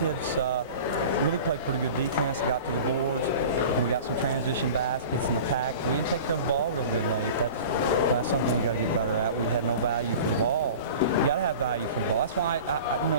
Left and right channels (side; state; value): both; inverted; correlation -0.38